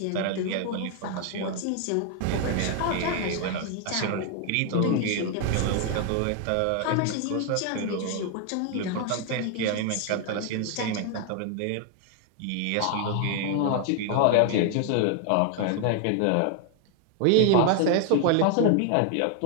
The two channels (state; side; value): different; both; correlation 0.00